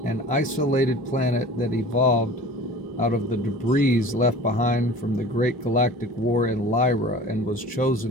an isolated planet that evolved out of the debris left behind from the Great Galactic War in Lyra and was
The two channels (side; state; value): both; normal; correlation 0.41